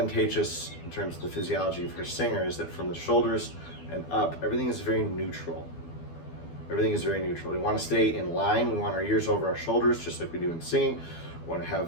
in terms of the physiology for a singer is that from the shoulders and up, everything is very neutral. Everything is very neutral. We want to stay in line. We want our ears over our shoulders, just like we do in singing. We want to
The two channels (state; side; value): late; right; 12 ms